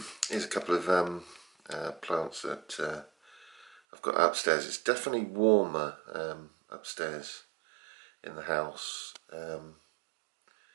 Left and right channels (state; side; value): drops out; left; at 3.8 s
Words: Here's a couple of plants that I've got upstairs. It's definitely warmer upstairs in the house.